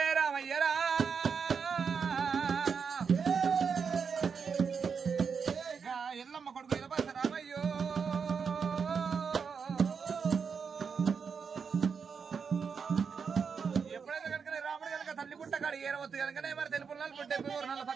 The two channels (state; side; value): quieter; left; 6.0 dB